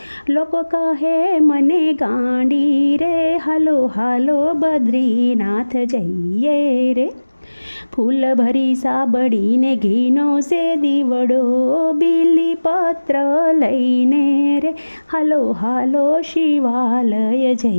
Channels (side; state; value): both; inverted; correlation -1.00